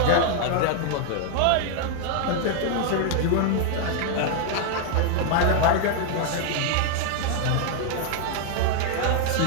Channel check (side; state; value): both; different; correlation 0.00